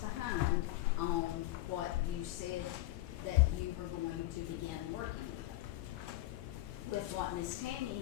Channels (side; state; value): right; quieter; 16.8 dB